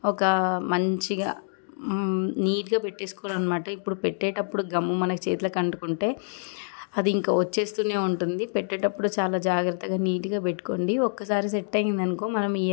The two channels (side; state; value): right; silent; digital silence